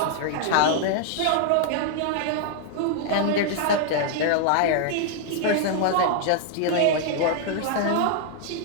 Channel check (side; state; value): both; different; correlation -0.01